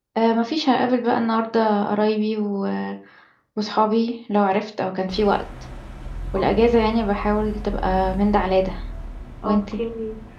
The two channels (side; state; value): both; identical; correlation 1.00